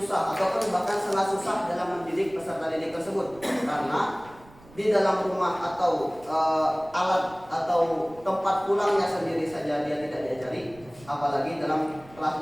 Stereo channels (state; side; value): noise; right; rumble, 23 dB below the sound